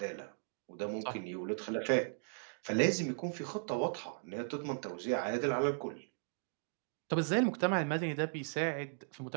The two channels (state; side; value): silent; left; digital silence